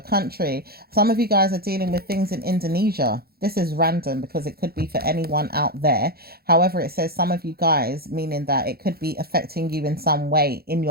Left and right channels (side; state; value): left; late; 0.45 ms